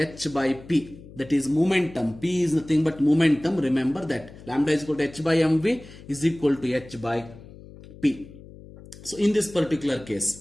by p. That is momentum. P is nothing but momentum. Remember that. Lambda is equal to h by mv is equal to h by p. So in this particular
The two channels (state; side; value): noise; left; hum, 18 dB below the sound